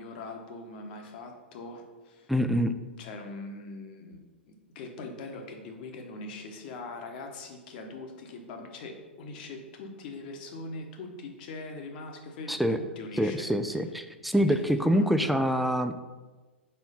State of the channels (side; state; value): both; normal; correlation 0.67